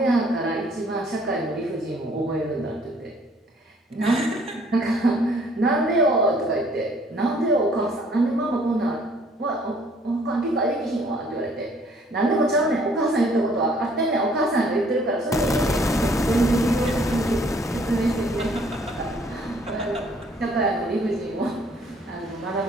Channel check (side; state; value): both; normal; correlation 0.60